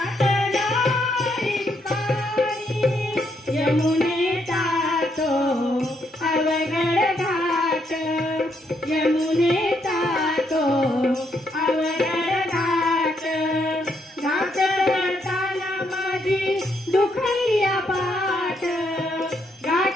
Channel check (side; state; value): both; normal; correlation 0.75